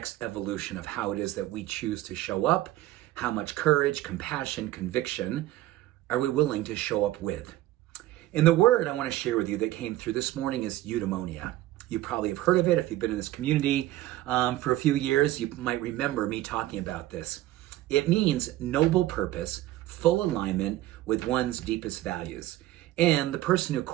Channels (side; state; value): left; quieter; 15.3 dB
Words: evolution of how it is that we choose to show up. How much courage, compassion, conviction are we willing to show up with? And the word I want to share with you that came through this morning is eudaimonia. You probably have heard of it. If you've been in this community for a few years, you might remember me talking about this. It means noble purpose, full alignment with one's deepest values. And the person who